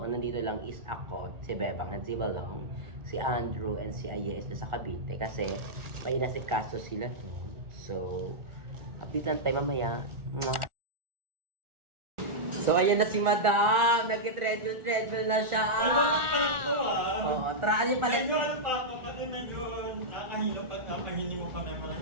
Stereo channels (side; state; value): left; late; 1.4 ms